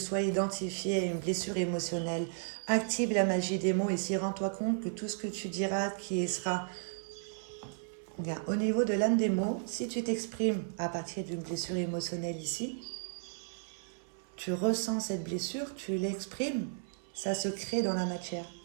identifié à une blessure émotionnelle. Active la magie des mots ici. Rends-toi compte que tout ce que tu diras qui sera... Bien, au niveau de l'âme des mots, si tu t'exprimes à partir d'une blessure émotionnelle ici, tu ressens cette blessure, tu l'exprimes, ça se crée dans la matière.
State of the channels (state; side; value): silent; left; 55 dB below the other